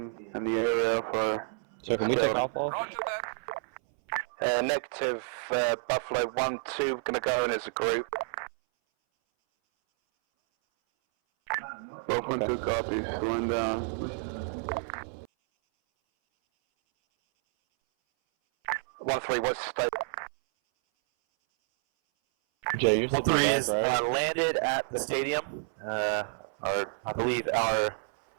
in the area for... So can we take off all? Negative, Buffalo 1-2, gonna go in as a group. Buff 1-2 copies, slowing down. 1-3, what's the state? Jay, you're 1-3 is landed at the stadium. I believe our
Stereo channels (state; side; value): silent; left; 58 dB below the other